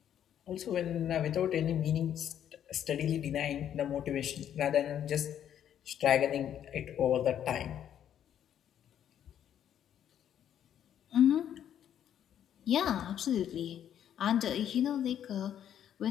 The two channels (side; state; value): right; quieter; 10.0 dB